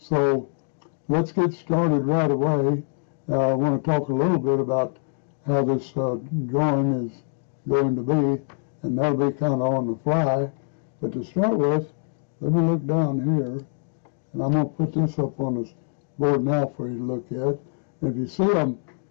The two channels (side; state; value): right; silent; digital silence